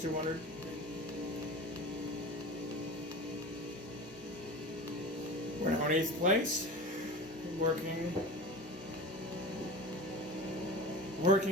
200. We're now in 8th place.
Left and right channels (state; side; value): normal; both; correlation 0.32